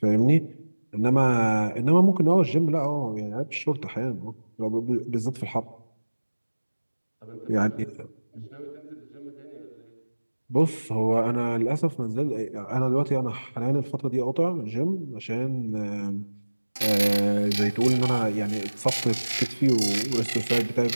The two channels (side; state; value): both; inverted; correlation -1.00